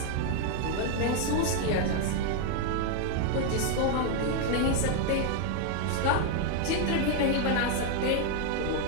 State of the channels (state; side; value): different; both; correlation 0.01